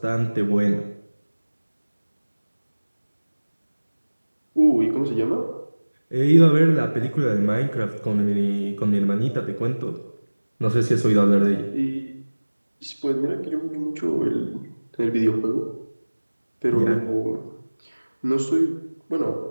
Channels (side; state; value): both; inverted; correlation -1.00